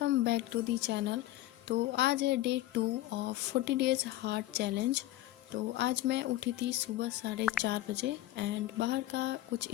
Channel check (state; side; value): quieter; right; 15.4 dB